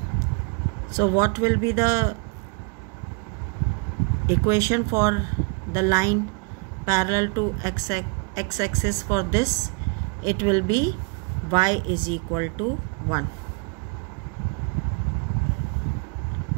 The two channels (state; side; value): quieter; left; 32.7 dB